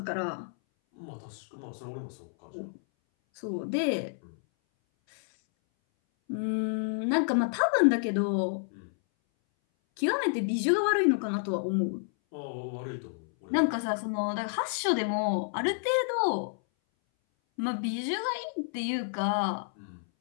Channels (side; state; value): right; silent; 58 dB below the other